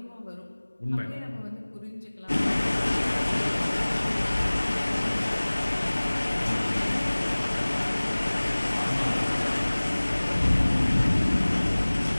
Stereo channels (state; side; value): inverted; both; correlation -1.00